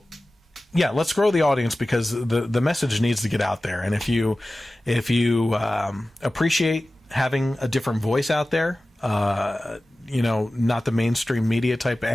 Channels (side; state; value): both; normal; correlation 0.96